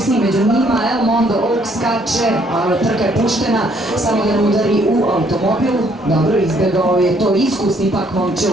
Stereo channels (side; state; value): both; normal; correlation 0.66